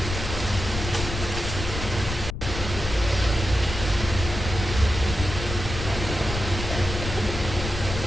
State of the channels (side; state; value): left; noise; rumble, 6 dB below the sound